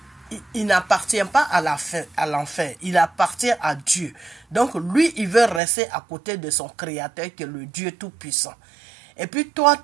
n'appartient pas à l'enfer. Il appartient à Dieu. Donc, lui, il veut rester à côté de son Créateur, qui est le Dieu Tout-Puissant. Et puis, toi,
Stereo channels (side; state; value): left; drops out; at 5.6 s